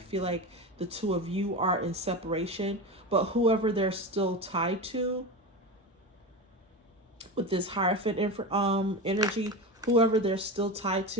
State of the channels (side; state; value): both; normal; correlation 0.23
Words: like the two of you are in separation, but whoever they're still tied to with this Hierophant energy, whoever they're still tied